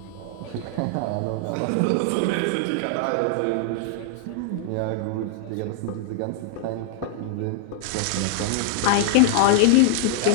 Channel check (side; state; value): both; different; correlation 0.00